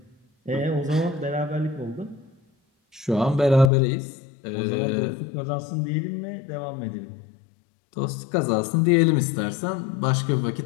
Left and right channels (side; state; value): right; drops out; at 3.7 s